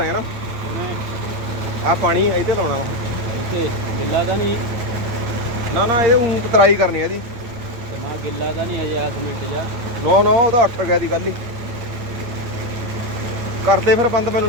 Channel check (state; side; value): late; left; 9.0 ms